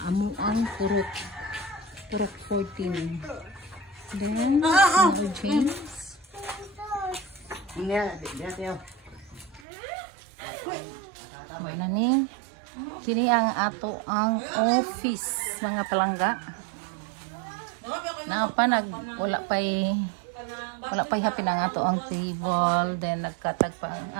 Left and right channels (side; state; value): left; drops out; at 9.7 s